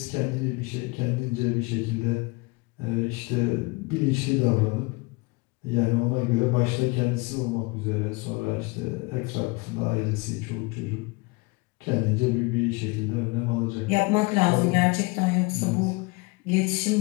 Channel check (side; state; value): right; quieter; 25.6 dB